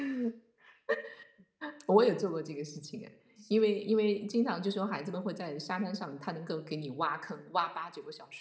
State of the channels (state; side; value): identical; both; correlation 1.00